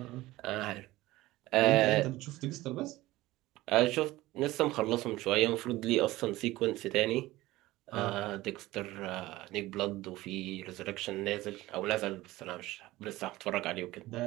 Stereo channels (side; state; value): left; quieter; 17.9 dB